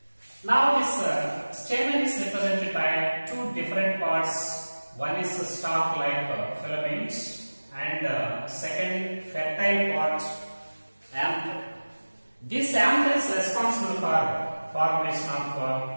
Now, this stamen is represented by two different parts. One is the stalk-like filaments, and second fertile part, anther. This anther is responsible for formation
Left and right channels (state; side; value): inverted; both; correlation -1.00